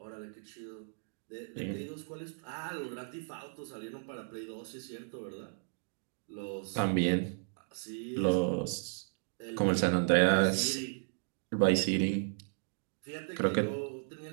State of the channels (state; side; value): silent; left; digital silence